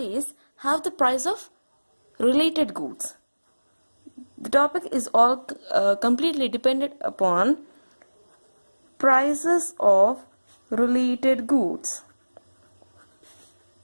how the price of related goods. The topic is all completely dependent upon prices of related goods.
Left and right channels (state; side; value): inverted; both; correlation -1.00